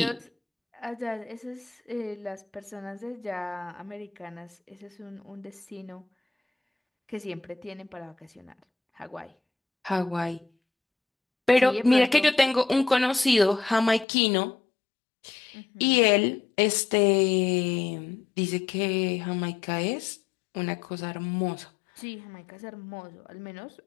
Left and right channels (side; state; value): right; drops out; at 14.1 s